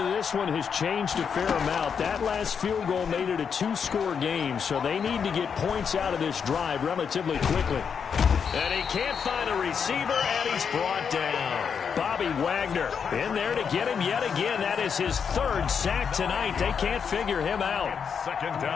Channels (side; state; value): right; quieter; 6.7 dB